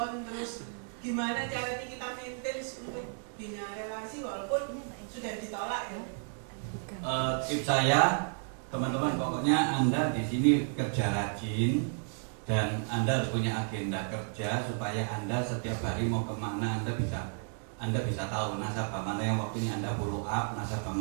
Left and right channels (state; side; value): silent; left; 56 dB below the other